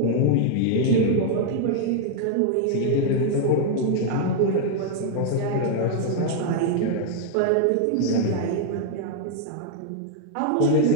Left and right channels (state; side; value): different; both; correlation 0.00